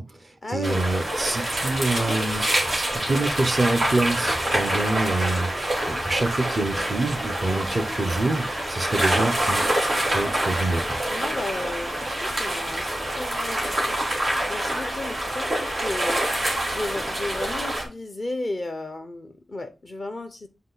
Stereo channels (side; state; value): both; normal; correlation 0.92